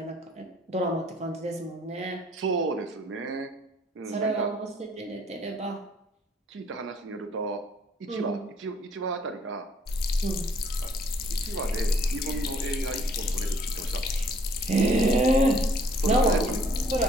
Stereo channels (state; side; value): normal; both; correlation 0.61